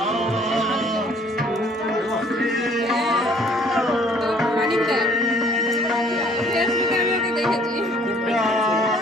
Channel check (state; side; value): normal; both; correlation 0.58